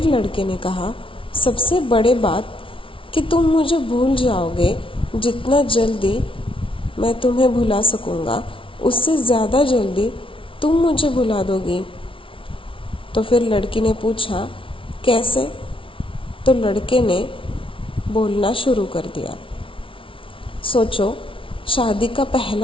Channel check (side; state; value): right; late; 0.25 ms